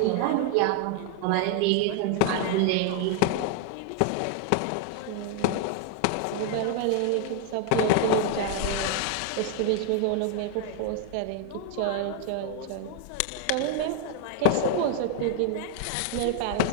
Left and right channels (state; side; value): different; both; correlation 0.00